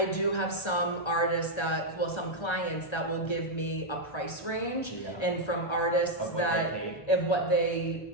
do have some artists some clients that will give me a price range, and from artists of what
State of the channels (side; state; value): right; late; 1.3 ms